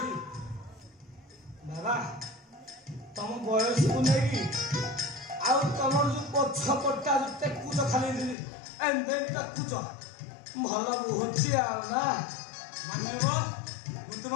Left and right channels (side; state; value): right; drops out; at 8.3 s